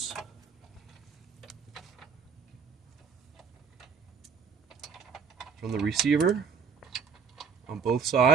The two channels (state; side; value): quieter; left; 6.2 dB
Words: from the receiver on both